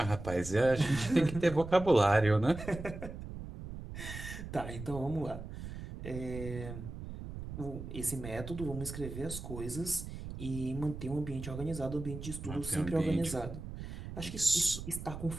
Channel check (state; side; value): noise; right; rumble, 9 dB below the sound